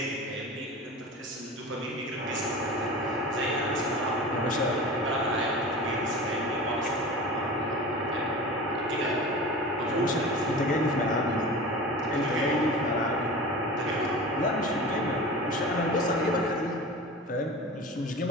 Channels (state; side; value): normal; both; correlation 0.33